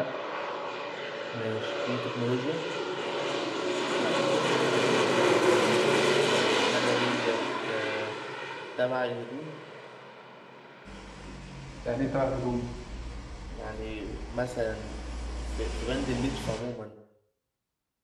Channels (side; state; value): both; identical; correlation 1.00